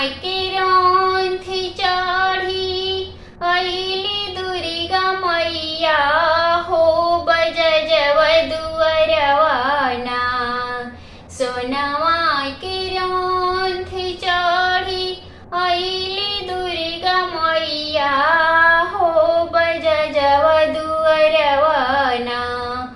के रौन थी चढ़ी अइली दुर्गा मैया हो, बजजव दुअरवाना। सोना माय के रौन थी चढ़ी अइली दुर्गा मैया हो, बजजव दुअरवाना।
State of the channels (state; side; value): identical; both; correlation 1.00